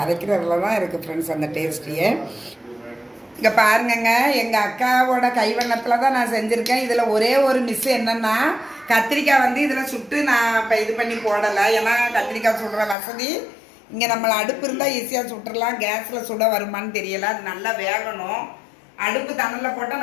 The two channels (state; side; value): drops out; right; at 13.0 s